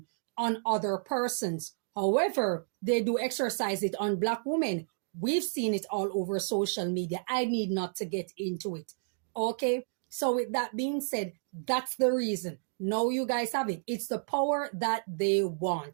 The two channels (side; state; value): left; silent; digital silence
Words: on other persons. However, they do exercise it on black women. We've seen it all over social media. I need not to get into it. Okay? So with that being said, that's the reason. Now you guys have it. It's the power that they